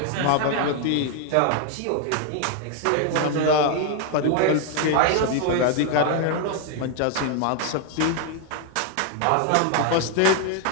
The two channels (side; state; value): both; different; correlation 0.01